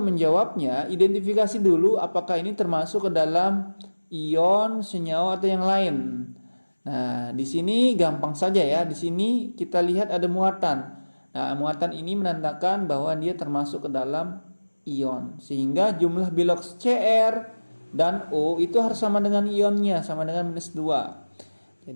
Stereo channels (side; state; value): both; inverted; correlation -1.00